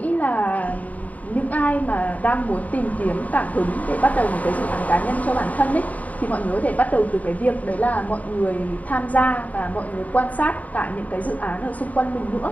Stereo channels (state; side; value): late; right; 0.072 ms